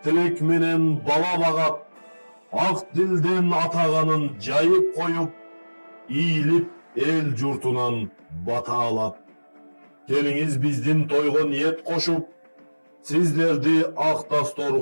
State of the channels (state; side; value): inverted; both; correlation -1.00